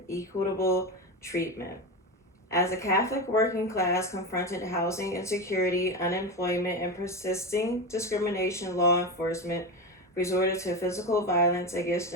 equitable treatment. As the Catholic working class confronted housing insecurity, unemployment, and persisting discrimination, law enforcement resorted to physical violence against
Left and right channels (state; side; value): normal; both; correlation 0.19